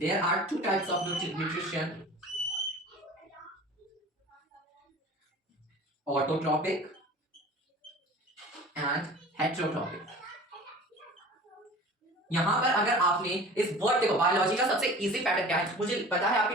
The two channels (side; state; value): both; normal; correlation 0.41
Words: there are 2 types of nutrition: autotrophic and heterotropic. यहां पर अगर आपने इस वर्ड, देखो बायोलॉजी का सबसे इजी पैटर्न क्या है? मुझे पता है आपकी